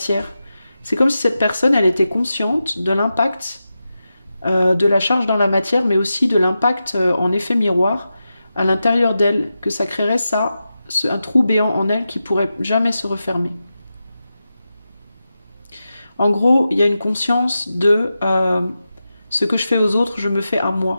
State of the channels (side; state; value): both; inverted; correlation -0.91